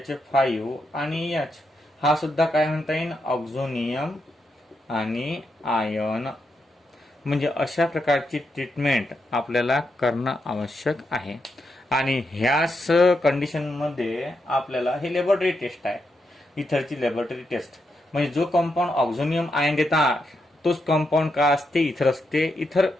आणि H. हा सुद्धा काय म्हणता येईल? ऑक्झोनियम आणि आयन. म्हणजे अशा प्रकारची ट्रीटमेंट आपल्याला करणं आवश्यक आहे. आणि ह्याच कंडिशन मध्ये आपल्याला हे लॅबोरेटरी टेस्ट आहे. इथरची लॅबोरेटरी टेस्ट. म्हणजे जो कंपाऊंड ऑक्झोनियम आयन देतात तोच कंपाऊंड का असते, इथर असते. इथर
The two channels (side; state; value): both; normal; correlation 0.83